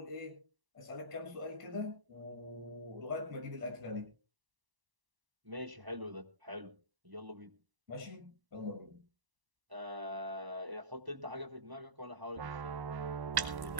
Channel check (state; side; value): late; left; 1.1 ms